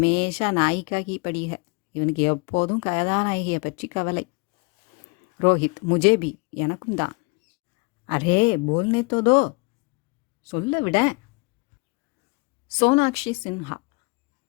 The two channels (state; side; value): quieter; right; 29.7 dB